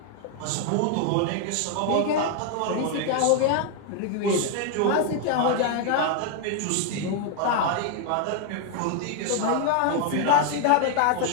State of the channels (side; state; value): both; different; correlation 0.00